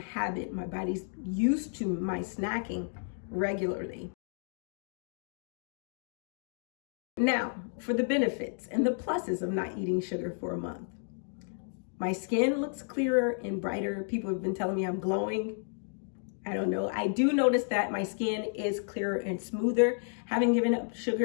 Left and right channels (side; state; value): right; silent; 57 dB below the other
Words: My body's used to my snacking regularly. Now, for the benefits and the pluses of not eating sugar for a month. My skin looks clearer and brighter. People have been telling me I'm glowing. I don't know. I do notice that my skin is clearer and smoother, having given up